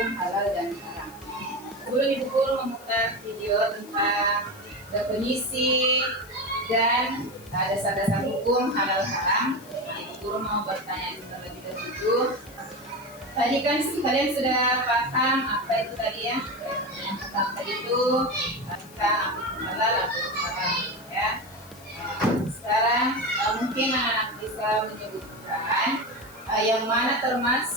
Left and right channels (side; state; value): left; noise; hiss, 22 dB below the sound